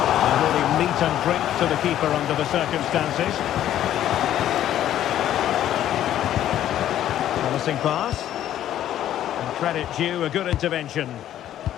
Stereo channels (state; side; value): quieter; right; 11.8 dB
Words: And really meat and drink to the keeper under the circumstances. Promising pass. And credit due, a good intervention.